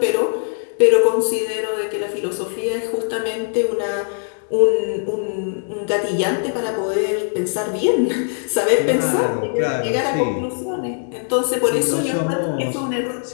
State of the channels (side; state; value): right; silent; digital silence